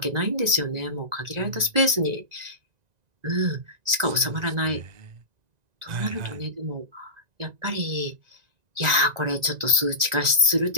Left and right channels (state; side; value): late; left; 1.9 ms